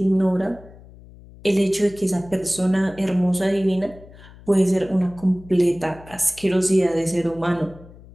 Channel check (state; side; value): noise; left; hum, 21 dB below the sound